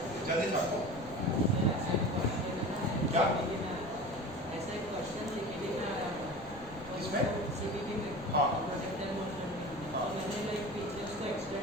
जल्दी छापो। क्या ऐसा एक क्वेश्चन सीपीटी में आया था। किसमें? सीपीटी में। हाँ। प्रोजेक्टाइल मोशन में। हाँ। तो मैंने लाइक पीछे उसको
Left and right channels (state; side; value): noise; left; rumble, 17 dB below the sound